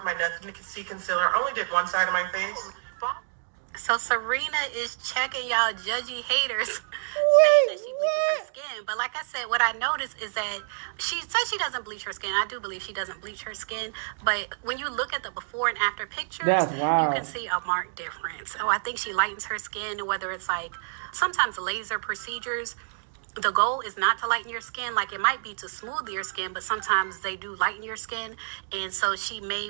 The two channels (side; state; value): left; silent; digital silence